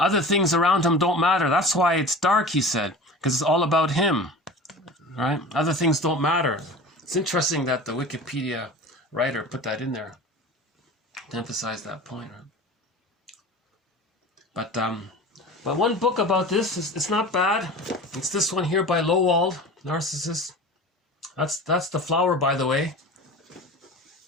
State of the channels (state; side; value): normal; both; correlation 0.36